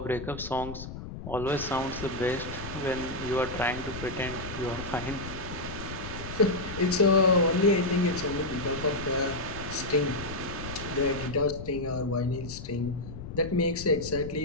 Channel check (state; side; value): noise; left; rumble, 10 dB below the sound